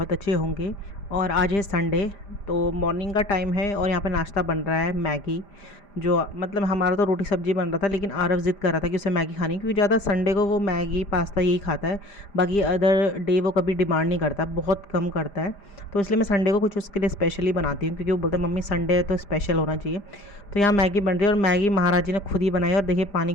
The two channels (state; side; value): late; right; 5.0 ms